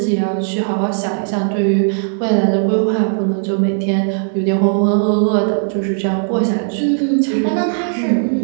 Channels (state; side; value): silent; left; digital silence